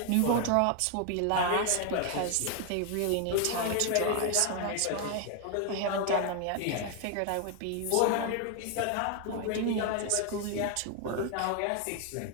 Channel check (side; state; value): both; different; correlation 0.01